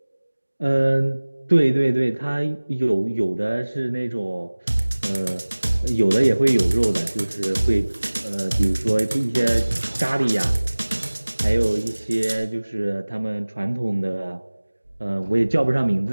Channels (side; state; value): both; inverted; correlation -1.00